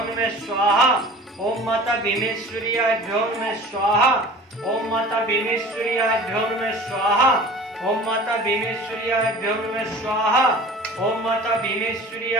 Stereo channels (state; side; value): normal; both; correlation 0.42